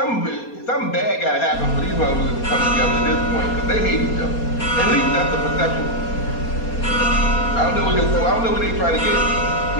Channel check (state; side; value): late; right; 4.2 ms